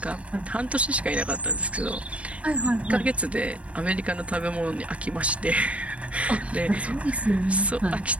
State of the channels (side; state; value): left; late; 0.064 ms